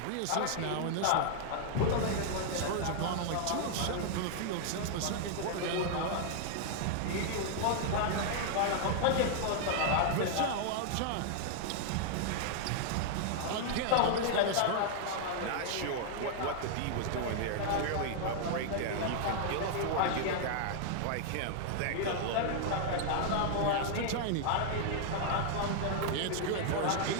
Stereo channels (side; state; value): both; different; correlation 0.00